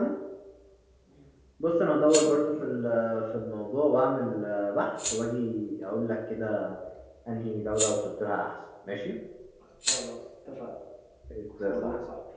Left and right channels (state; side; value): identical; both; correlation 1.00